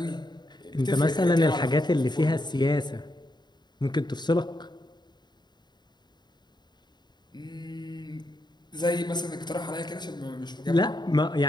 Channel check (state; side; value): late; right; 0.21 ms